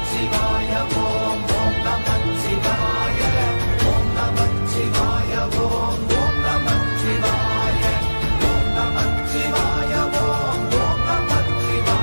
ஓம் ஓம் நமச்சிவாய ஓம் நமச்சிவாய ஓம் ஓம் நமச்சிவாய ஓம் நமச்சிவாய ஓம் ஓம்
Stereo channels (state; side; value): inverted; both; correlation -1.00